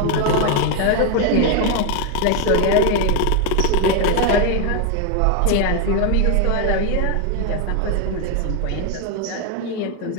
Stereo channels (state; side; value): different; both; correlation 0.01